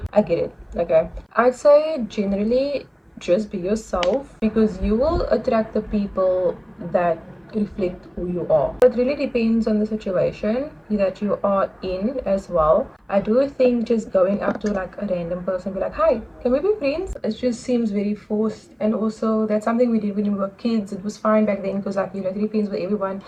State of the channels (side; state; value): both; identical; correlation 1.00